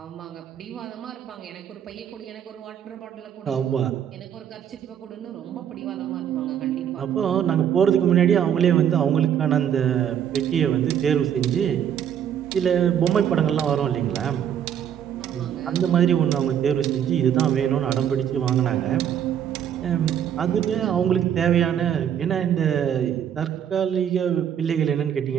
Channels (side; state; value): left; quieter; 9.3 dB